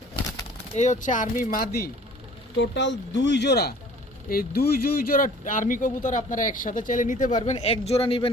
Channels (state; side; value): normal; both; correlation 0.50